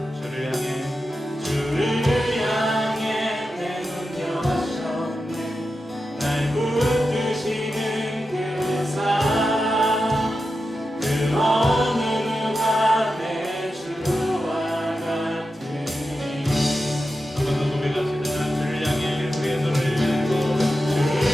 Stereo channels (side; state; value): both; normal; correlation 0.90